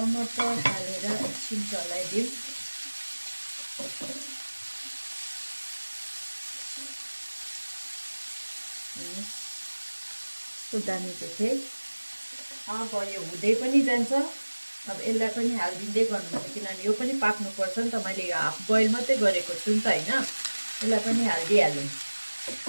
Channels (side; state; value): both; inverted; correlation -1.00